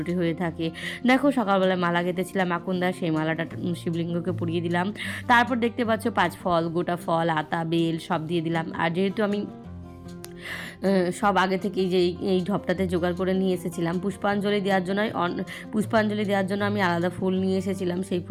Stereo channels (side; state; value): both; identical; correlation 1.00